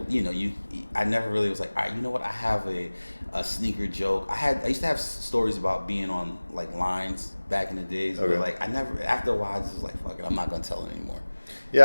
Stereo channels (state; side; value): inverted; both; correlation -1.00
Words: you know, I never really was like, all right, you know what? I have a sneaker joke. I used to have stories about being on like lines back in the days, but like after a while, I just was like, fuck it, I'm not gonna tell it anymore.